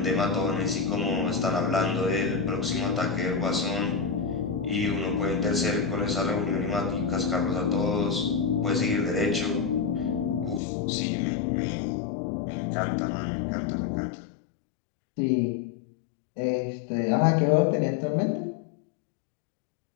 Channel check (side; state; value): right; drops out; at 10.6 s